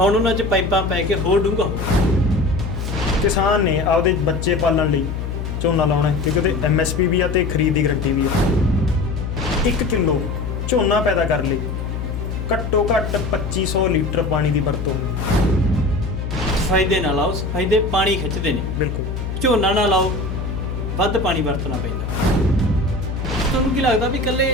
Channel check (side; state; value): left; noise; hum, 4 dB below the sound